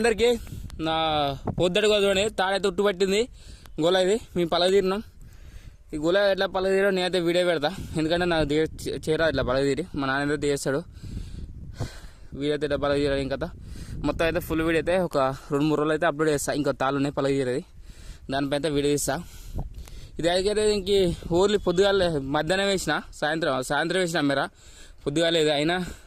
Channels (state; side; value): identical; both; correlation 1.00